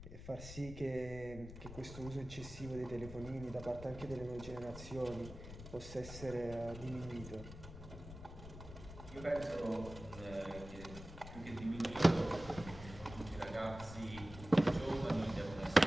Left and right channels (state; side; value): noise; left; rumble, 13 dB below the sound